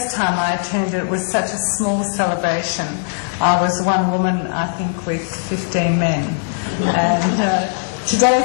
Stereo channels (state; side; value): silent; right; 64 dB below the other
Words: time I attended it was such a small celebration. I was one woman, I think, with 15 men, and today